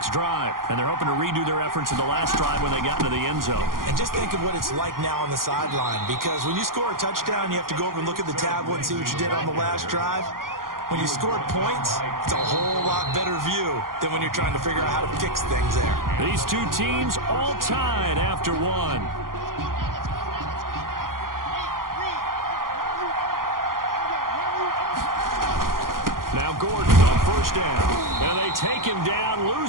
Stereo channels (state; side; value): late; left; 0.91 ms